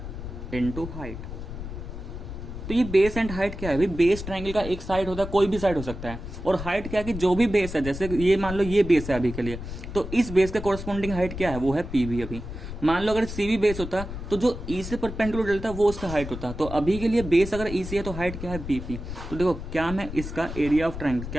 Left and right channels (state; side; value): noise; left; rumble, 9 dB below the sound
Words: into height. तो ये बेस एंड हाइट क्या है भाई, बेस ट्रायंगल का एक साइड होता है, कोई भी साइड हो सकता है, और हाइट क्या है कि जो भी बेस है, जैसे ये मान लो ये बेस है अभी के लिए, तो इस बेस का कोरस्पॉन्डिंग हाइट क्या है, वो है पीबी। अभी मान लो अगर सीबी बेस होता तो जो ई से परपेंडिकुलर डलता वो उसका हाइट होता, तो अभी के लिए बेस अगर ई सी है तो हाइट क्या है, बीपी। तो देखो क्या मैं इसका एरिया ऑफ ट्राइंगल,